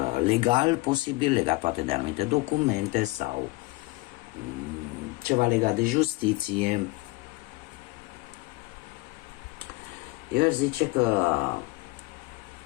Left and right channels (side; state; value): right; quieter; 22.6 dB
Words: legal posibil, legat poate de anumite documente sau ceva legat de justiție. Eu aș zice că